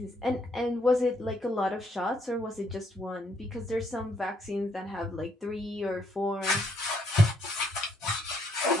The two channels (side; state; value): both; normal; correlation 0.71